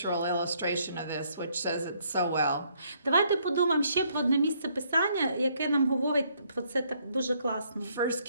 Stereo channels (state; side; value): inverted; both; correlation -0.69